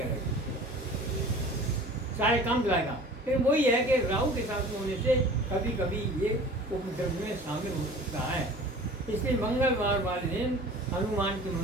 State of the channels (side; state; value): both; normal; correlation 0.43